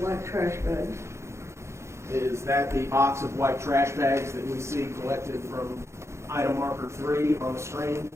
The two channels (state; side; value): late; left; 0.13 ms